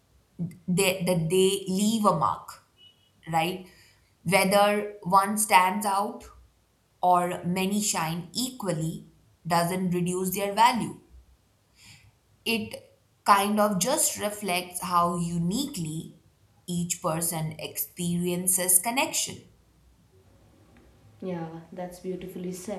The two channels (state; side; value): identical; both; correlation 1.00